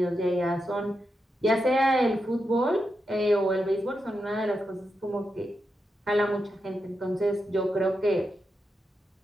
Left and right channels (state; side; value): normal; both; correlation 0.86